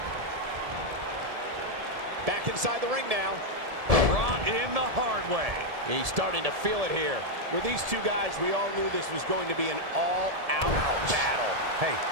Back inside the ring now. Brought in the hard way. He's starting to feel it here. With these two guys, we all knew this was going to be an all-out battle. Hey,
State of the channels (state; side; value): late; left; 1.7 ms